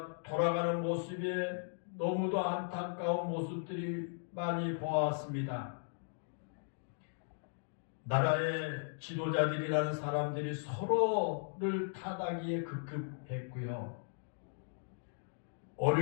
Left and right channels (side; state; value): right; silent; digital silence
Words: 돌아가는 모습에 너무도 안타까운 모습들이 많이 보았습니다. 나라의 지도자들이라는 사람들이 서로를 타다기에 급급했고요.